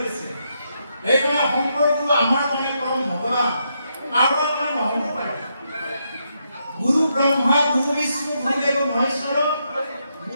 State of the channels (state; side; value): inverted; both; correlation -0.80